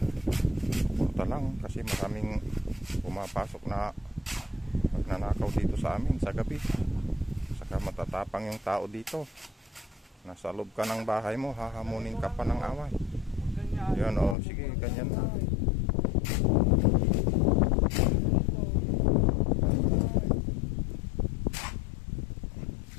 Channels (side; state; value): right; drops out; at 14.4 s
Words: punta lang kasi maraming pumapasok na magnanakaw dito sa amin sa gabi. Saka matatapang yung tao dito. Nasa loob ka ng bahay mo, hahamunin ka pa ng away. Yan o, sige, ganyan na.